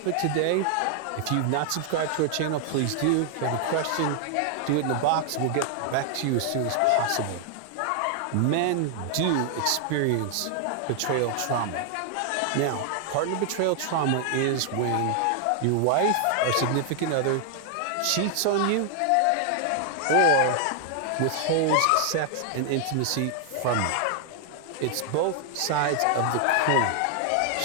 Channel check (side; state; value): both; different; correlation 0.00